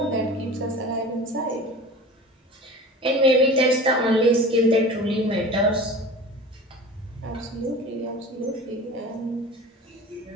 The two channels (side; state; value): both; normal; correlation 0.38